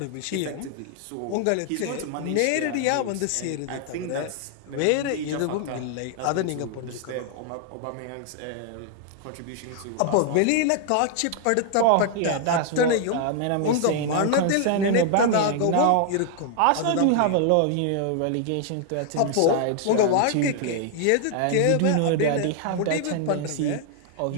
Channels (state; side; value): different; both; correlation 0.00